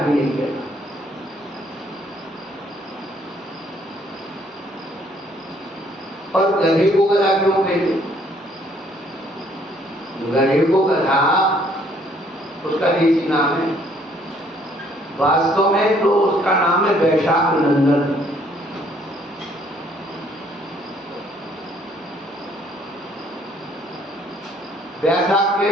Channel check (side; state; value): both; normal; correlation 0.64